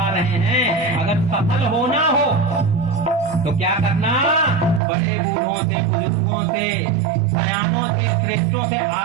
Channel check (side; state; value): left; drops out; at 4.8 s